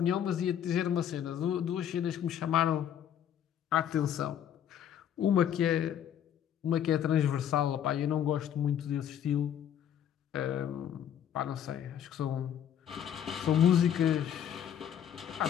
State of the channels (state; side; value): quieter; right; 9.6 dB